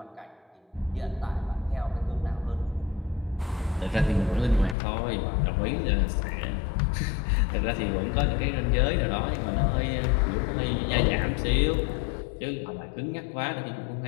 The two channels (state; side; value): drops out; right; at 4.8 s